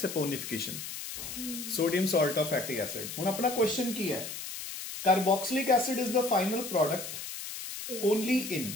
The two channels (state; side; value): noise; left; hiss, 8 dB below the sound